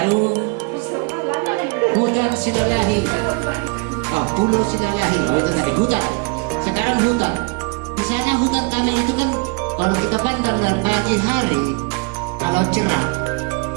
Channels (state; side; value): quieter; left; 30.7 dB